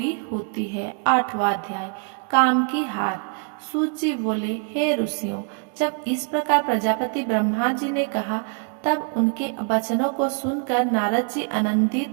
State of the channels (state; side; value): quieter; left; 39.4 dB